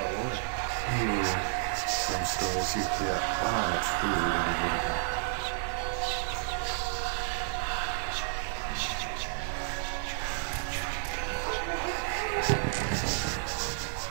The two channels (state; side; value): silent; left; digital silence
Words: orders. Some stories you hear are true in the world.